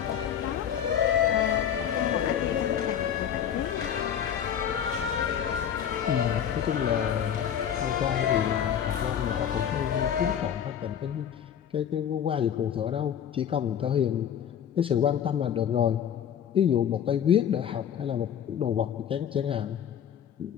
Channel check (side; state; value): right; quieter; 9.0 dB